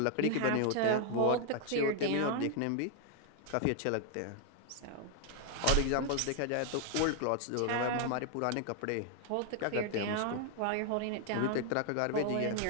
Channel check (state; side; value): different; both; correlation 0.00